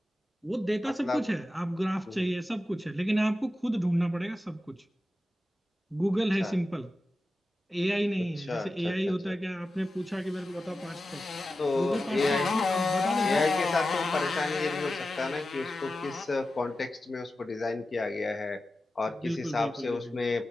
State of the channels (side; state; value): both; normal; correlation 0.93